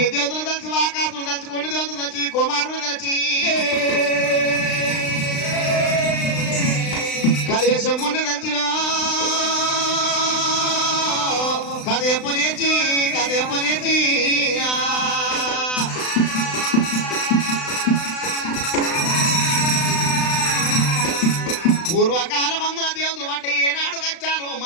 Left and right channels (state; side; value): late; right; 36 ms